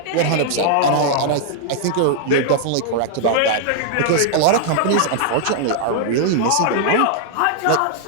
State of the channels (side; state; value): both; different; correlation -0.01